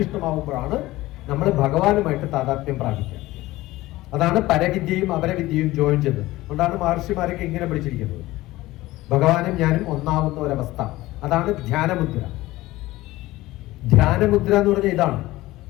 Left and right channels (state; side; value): quieter; right; 17.9 dB